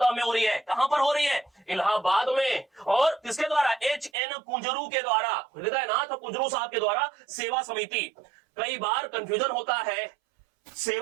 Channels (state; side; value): drops out; left; at 4.1 s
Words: में हो रही है। कहां पर हो रही है? इलाहाबाद में। और किसके द्वारा? एच.एन. कुंजरू के द्वारा, हृदयनाथ कुंजरू साहब के द्वारा सेवा समिति। कई बार कंफ्यूजन होता है,